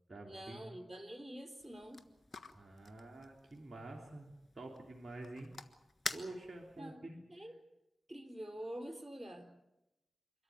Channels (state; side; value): normal; both; correlation 0.92